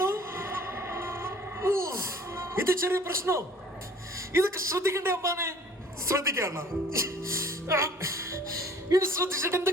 ഇത് ചെറിയ പ്രശ്നോ? ഇതൊക്കെ ശ്രദ്ധിക്കണ്ടേ അമ്മാനെ? ശ്രദ്ധിക്കാണ ഇത് ശ്രദ്ധിച്ചിട്ട് എന്ത്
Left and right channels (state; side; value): normal; both; correlation 0.52